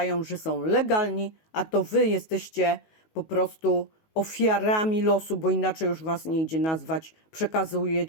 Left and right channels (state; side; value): late; right; 19 ms